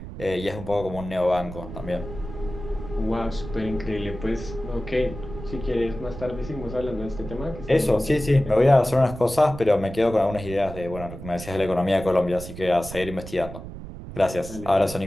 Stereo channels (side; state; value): right; noise; rumble, 11 dB below the sound